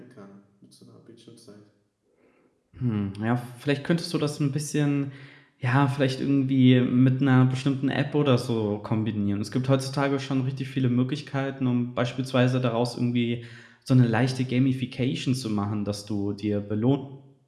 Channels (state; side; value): identical; both; correlation 1.00